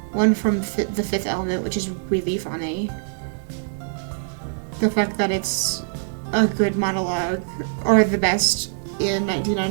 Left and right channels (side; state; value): left; silent; 63 dB below the other